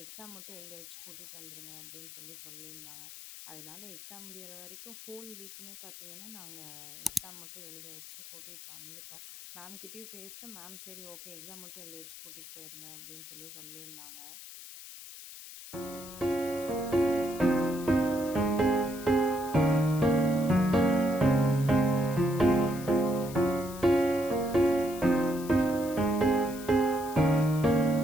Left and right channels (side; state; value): left; noise; hiss, 15 dB below the sound